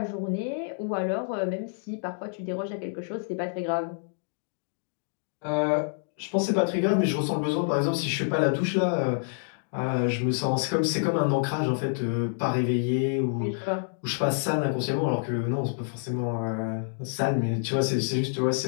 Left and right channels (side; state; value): right; silent; digital silence